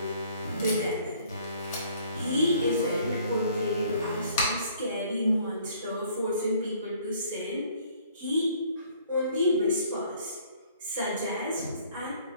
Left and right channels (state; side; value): inverted; both; correlation -0.58